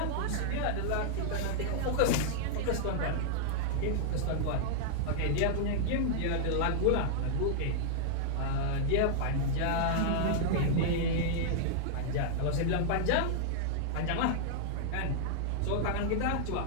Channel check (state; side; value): different; both; correlation -0.01